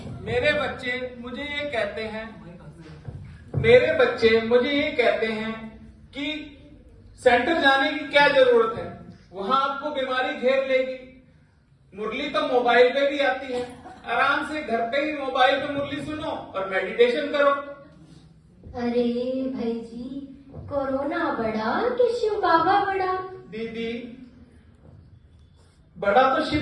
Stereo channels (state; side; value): identical; both; correlation 1.00